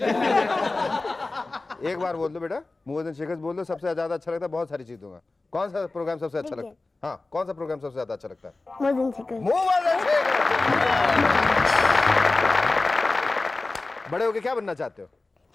एक बार बोल दो बेटा, मुअज्जन शेखर बोल दो सबसे ज्यादा अच्छा लगता है, बहुत सारी चीज दूंगा। कौन सा प्रोग्राम सबसे अच्छा लगता है? हाँ, कौन सा प्रोग्राम सबसे ज्यादा अच्छा लगता है? मुअज्जन शकल। मुअज्जन शेखर। बड़े होके क्या बनना चाहते हो?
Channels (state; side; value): quieter; right; 3.3 dB